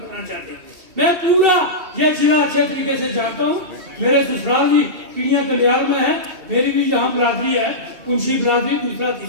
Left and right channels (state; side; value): late; left; 2.7 ms